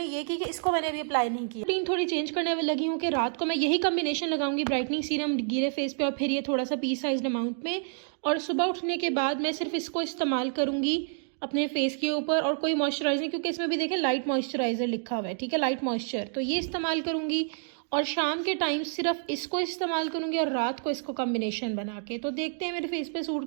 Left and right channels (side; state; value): left; silent; 59 dB below the other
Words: ये की कि इसको मैंने अभी अप्लाई नहीं किया। रूटीन थोड़ी चेंज करने में लगी हूँ कि रात को मैं यही कम्बिनेशन लगाऊंगी, ब्राइटनिंग सीरम गीले फेस पे और फिर ये थोड़ा सा पी साइज अमाउंट में। और सुबह उठने के बाद मैं सिर्फ इसको इस्तेमाल करूँगी अपने फेस के ऊपर और कोई मॉइस्चराइजर, क्योंकि इसमें भी देखें लाइट मॉइस्चराइज़र लिखा हुआ है, ठीक है, लाइट मॉइस्चर, तो ये इस्तेमाल करूँगी। और शाम के टाइम सिर्फ इसको इस्तेमाल करूँगी और रात को इसको कॉम्बिनेशन बना के। तो देखते हैं मेरे फेस पे सूट